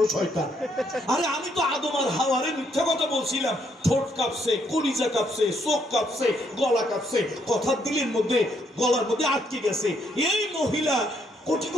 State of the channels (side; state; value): both; normal; correlation 0.72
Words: শয়তান। আরে আমি তো আদম আর হাওয়ারে মিথ্যা কথা বলছিলাম, ঠোঁট কাঁপছে, কলিজা কাঁপছে, চোখ কাঁপছে, গলা কাঁপছে, কথার দিলের মধ্যে গলার মধ্যে আটকে গেছে। এই মহিলা কোটি